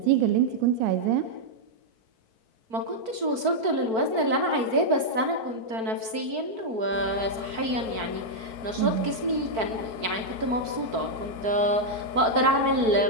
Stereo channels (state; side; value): late; left; 4.5 ms